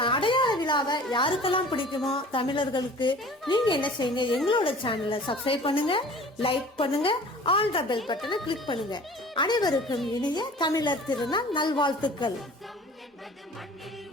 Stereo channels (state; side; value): normal; both; correlation 0.45